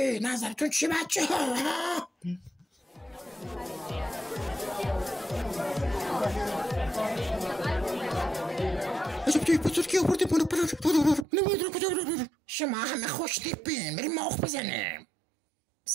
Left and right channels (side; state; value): left; drops out; at 11.2 s